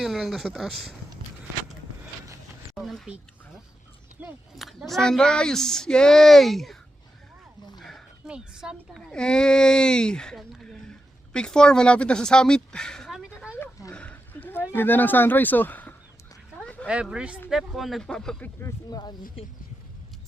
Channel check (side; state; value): both; normal; correlation 0.88